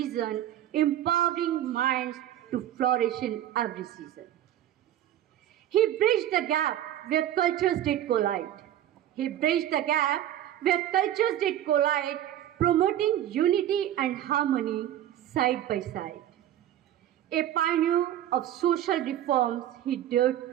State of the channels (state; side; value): quieter; left; 12.0 dB